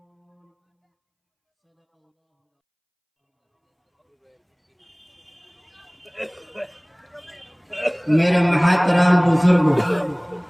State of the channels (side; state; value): both; identical; correlation 1.00